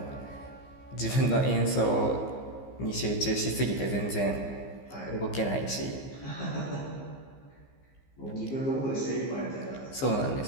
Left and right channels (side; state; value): right; late; 15 ms